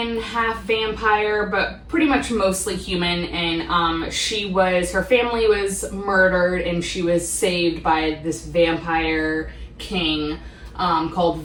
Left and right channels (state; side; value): identical; both; correlation 1.00